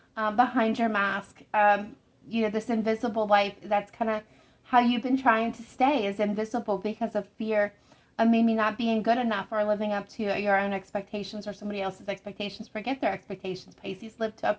behind your mask. This invisible life, that's kind of how you've been trying to stay, is invisible because of fear of maybe not being good enough or living up to your own expectations or somebody else's expectations. Forget their expectations, Pisces. Live up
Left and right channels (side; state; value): both; identical; correlation 1.00